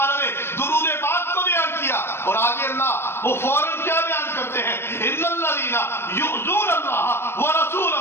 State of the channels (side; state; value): right; late; 0.12 ms